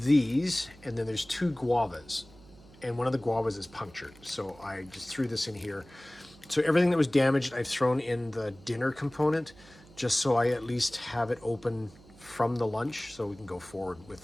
these, and then there's 2 guavas, and one of the guavas is punctured. So I just threw this in here. So everything that was damaged, I've thrown in the dinner component, just so I at least have it open from the lunch, so we can go forward with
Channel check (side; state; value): right; noise; hum, 24 dB below the sound